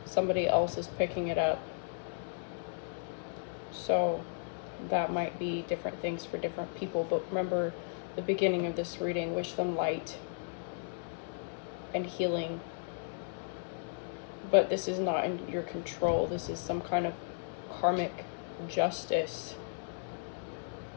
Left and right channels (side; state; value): right; silent; 55 dB below the other